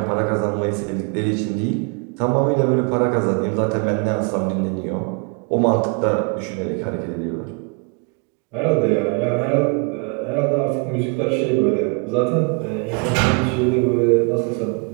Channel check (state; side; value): quieter; left; 35.2 dB